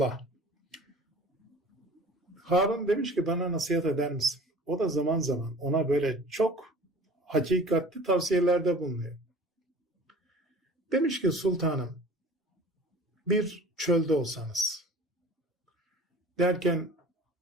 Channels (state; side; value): normal; both; correlation 0.43